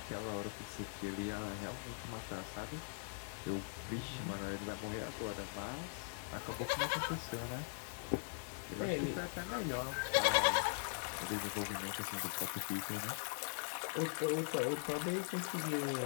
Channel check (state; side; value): silent; right; 50 dB below the other